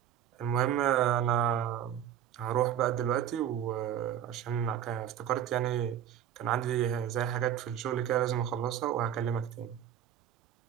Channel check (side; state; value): left; quieter; 10.1 dB